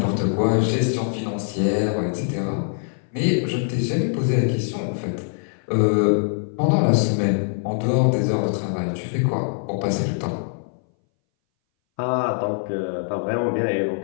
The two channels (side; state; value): right; silent; 61 dB below the other